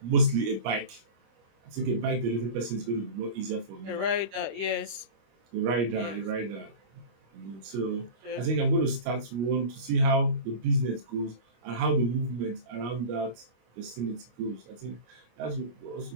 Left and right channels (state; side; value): late; left; 25 ms